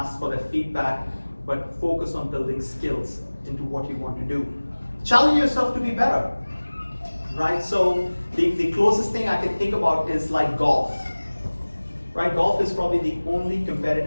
for their feedback, but focus on building skills into what you want to do. Challenge yourself to be better, right? So the closest thing I can think about is like golf, right? Golf is probably the only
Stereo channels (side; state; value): both; inverted; correlation -1.00